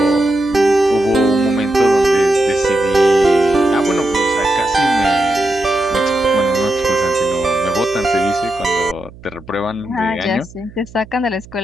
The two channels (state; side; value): noise; right; hum, 20 dB below the sound